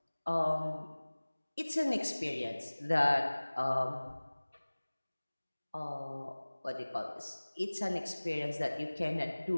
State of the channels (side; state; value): both; inverted; correlation -1.00